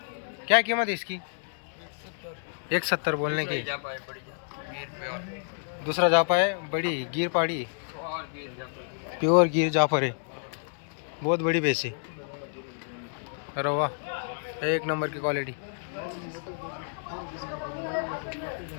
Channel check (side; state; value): right; silent; digital silence